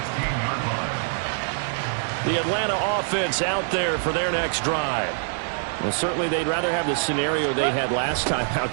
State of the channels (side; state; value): left; silent; digital silence